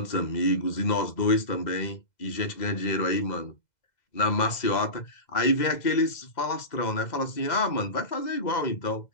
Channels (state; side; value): late; right; 2.0 ms